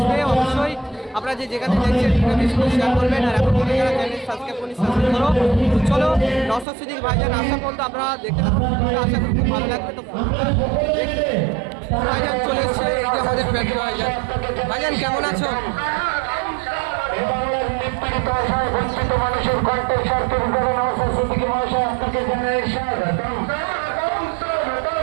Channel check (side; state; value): left; drops out; at 6.7 s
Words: অবশ্যই আপনারা যে যেখানে দেখছেন ভিডিওটা শেয়ার করবেন, আর এখন যারা চ্যানেল সাবস্ক্রাইব করুন সাবস্ক্রাইব করো। তো চলো নওশাদ সিদ্দিকী ভাইজান আসা পর্যন্ত আপনারা দেখতে থাকুন, আশা করি খুব ভালো লাগবে। তো ভাইজান চলে এসছে, এই যে আমাদের প্রাণপ্রিয় ভাইজান। ভাইজান কেমন আছো? বঞ্চিত মানুষের কণ্ঠের স্বার্থে নওশাদ সিদ্দিকী মহাশয় আপনাকে জানাই স্বাগতম।